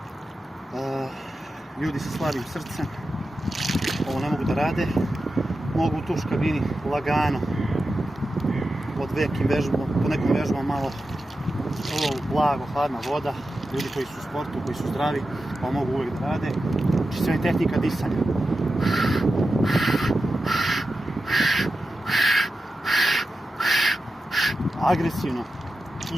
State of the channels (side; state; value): both; normal; correlation 0.91